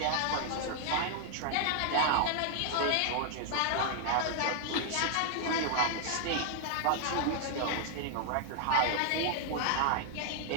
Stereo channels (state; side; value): different; both; correlation -0.01